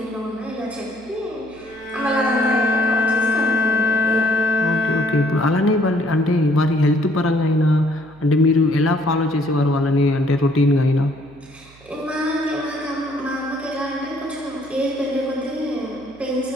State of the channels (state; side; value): noise; right; hum, 26 dB below the sound